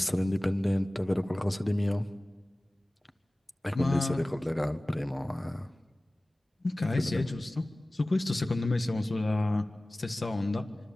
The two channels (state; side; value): normal; both; correlation 0.98